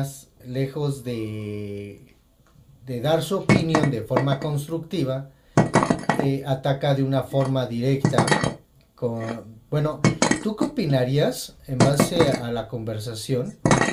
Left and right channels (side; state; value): both; identical; correlation 1.00